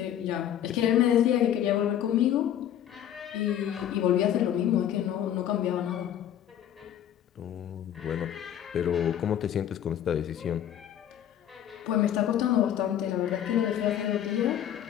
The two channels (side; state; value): right; quieter; 10.5 dB